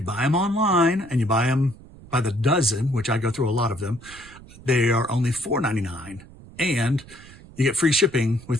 buy them online and you buy them by the dozen, which I go through a lot of them, they are only $4.99, and you get free shipping with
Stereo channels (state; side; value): noise; right; rumble, 20 dB below the sound